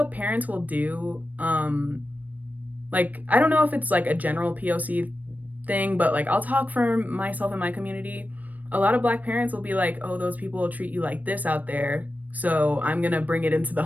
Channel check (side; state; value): left; late; 0.078 ms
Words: parents will do, like, I don't know if it's like a general POC thing, but like, I'll talk for myself and my community. A lot of Black parents will be like, oh, those people will treat you like this out there, so I'm gonna bring it into the